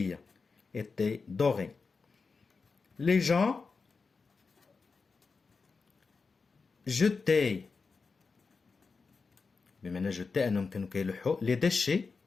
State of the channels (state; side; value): quieter; right; 4.6 dB